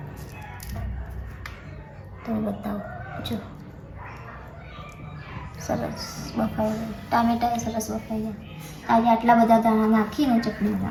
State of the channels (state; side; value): identical; both; correlation 1.00